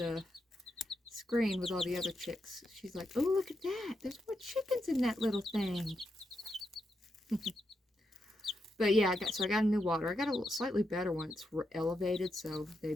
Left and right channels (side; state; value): both; normal; correlation 0.84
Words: screen with all the other chicks. She's like, oh, look at that. There's more chickens in that little thing. But yeah, I got a new water. I got a slightly better one. It's elevated, so they